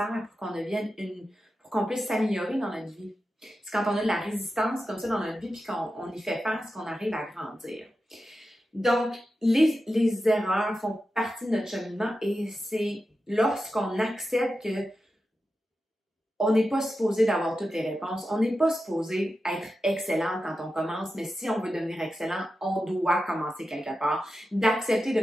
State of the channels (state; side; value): normal; both; correlation 0.91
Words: pour qu'on puisse s'améliorer dans notre vie. C'est quand on a de la résistance comme ça dans notre vie puis qu'on y fait face qu'on arrive à grandir. Donc, les erreurs font partie de notre cheminement et c'est lorsqu'on accepte que on n'est pas supposé d'avoir toutes les réponses. On n'est pas supposé être excellent quand on commence, mais si on veut devenir excellent, on doit commencer quelque part. D'accepter de